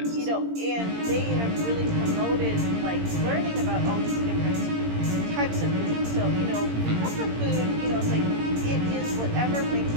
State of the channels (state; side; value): late; left; 17 ms